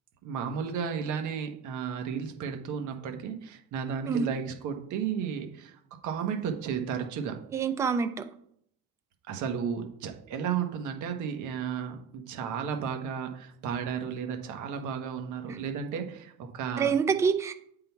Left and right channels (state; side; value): quieter; left; 6.5 dB